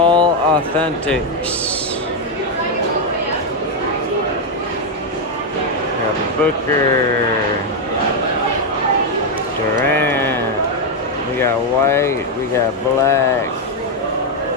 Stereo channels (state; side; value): normal; both; correlation 0.03